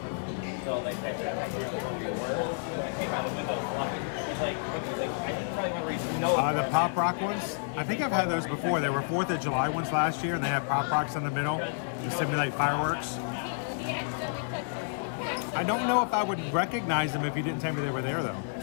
The Pop Rock ones, I think I've had those before. They were 4th of July ones last year, and they had Pop Rocks in the middle to simulate fireworks. I don't know if I would recognize them if you didn't tell me they were there, though.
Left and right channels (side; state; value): right; silent; 57 dB below the other